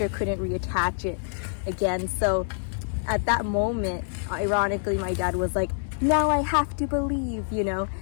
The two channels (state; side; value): silent; right; digital silence